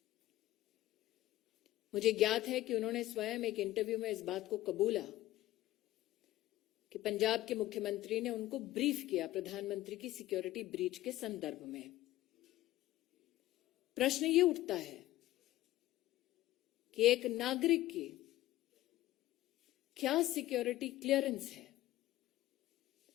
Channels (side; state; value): right; quieter; 15.8 dB